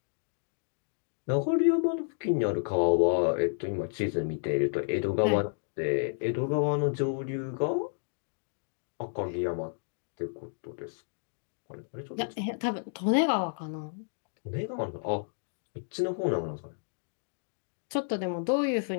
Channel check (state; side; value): silent; right; digital silence